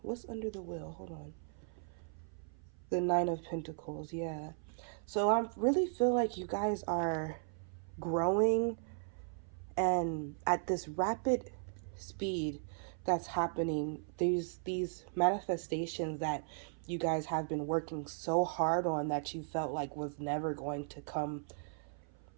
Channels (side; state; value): left; silent; 53 dB below the other